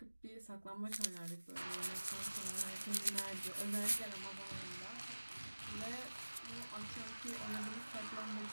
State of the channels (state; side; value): inverted; both; correlation -1.00